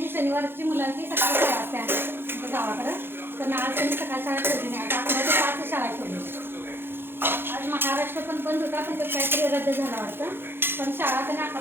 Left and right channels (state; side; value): late; left; 0.10 ms